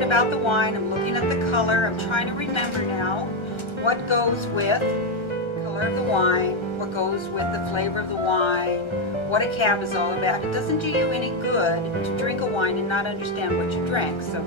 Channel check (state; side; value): late; right; 1.3 ms